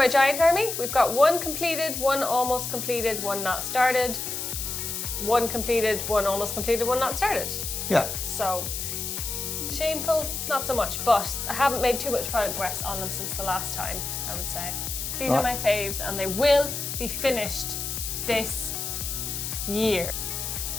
giant army. We've got one completed, one almost completed, one not started, one completed, one almost completed, one not started. Yeah. So, shameful, not so much, but I haven't made too much progress on them since the last time, I would say. These are my faves, and they will be finished this year.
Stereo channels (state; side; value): noise; left; hiss, 4 dB below the sound